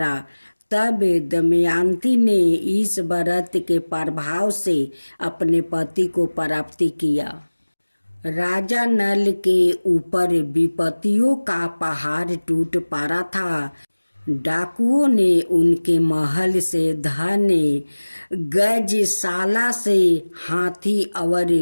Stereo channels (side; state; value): both; inverted; correlation -1.00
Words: तब दमयंती ने इस व्रत के प्रभाव से अपने पति को प्राप्त किया। राजा नल के ऊपर विपत्तियों का पहाड़ टूट पड़ा था। डाकुओं ने उनके महल से धन, गजशाला से हाथी और